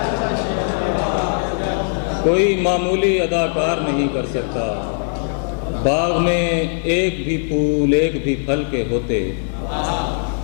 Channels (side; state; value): right; silent; digital silence